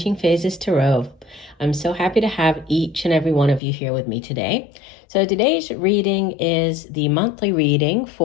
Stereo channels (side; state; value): right; drops out; at 3.6 s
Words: Phases Tarot. I'm so happy to have each and every one of you here with me today. So today's reading is the monthly reading